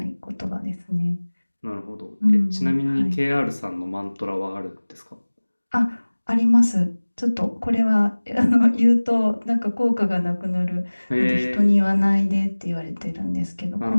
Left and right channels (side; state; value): both; inverted; correlation -1.00